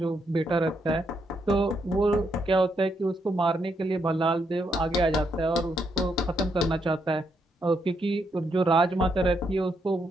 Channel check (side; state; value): both; normal; correlation 0.78